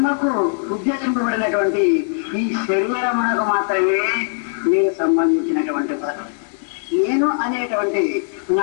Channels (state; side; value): silent; right; 66 dB below the other